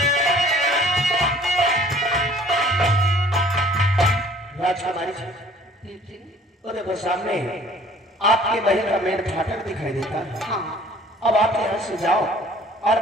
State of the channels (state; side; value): normal; both; correlation 0.53